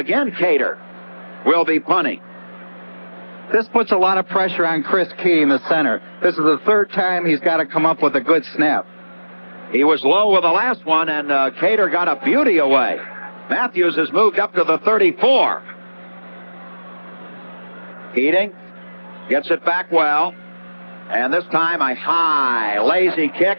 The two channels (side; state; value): both; inverted; correlation -1.00